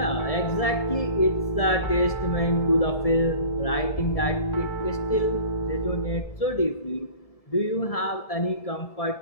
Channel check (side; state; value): right; late; 1.7 ms